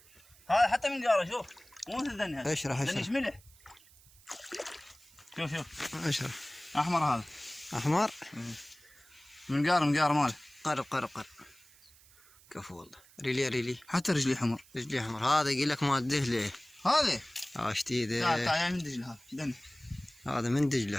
هذا حتى من جاره شوف. مو مثل ذني هذا. اشرح. ذني ملح. شوف. اشرح. احمر هذا. احمر. من قار ماله. قرب. كفو والله. ريلي. حتى رجلي حمر. رجلي احمر. هذا يقول لك مال دهله. هذا. اشتي تعال من دجله هذا. ذني. هذا من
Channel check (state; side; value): noise; right; hiss, 26 dB below the sound